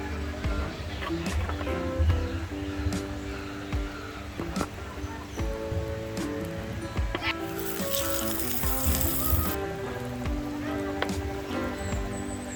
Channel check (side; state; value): both; identical; correlation 1.00